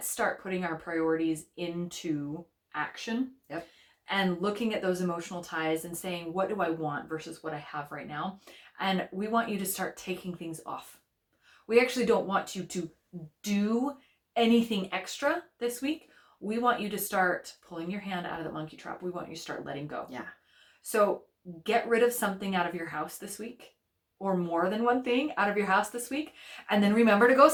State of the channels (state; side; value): identical; both; correlation 1.00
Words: start putting our priorities into action. Yep. And looking at those emotional ties and saying, what do I want versus what I have right now? And we want you to start taking things off. We actually don't want you to do anything extra this week. We want you to start pulling your hand out of the monkey trap. We want you to start letting go. Yeah. So get rid of something out of your house this week, or more than one thing out of your house this week. And then remember to go